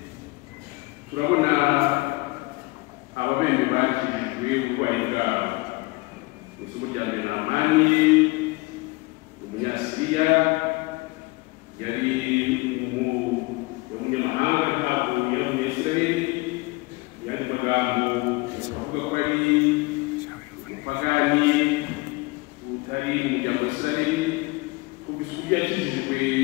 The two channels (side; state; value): right; quieter; 23.8 dB